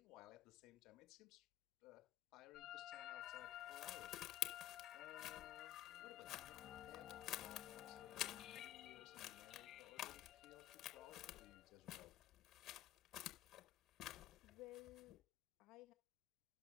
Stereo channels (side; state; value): right; quieter; 12.9 dB